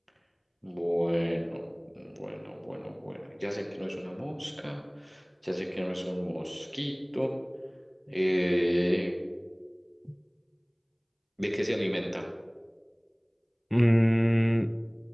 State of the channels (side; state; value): both; identical; correlation 1.00